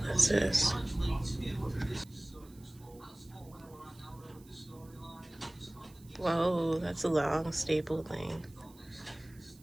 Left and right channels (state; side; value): noise; right; hiss, 26 dB below the sound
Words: this is. Whoa, that's a long staple thing.